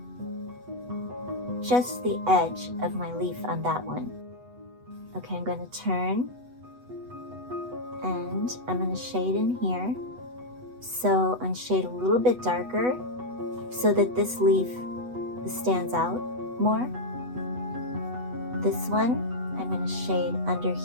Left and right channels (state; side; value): late; left; 8.1 ms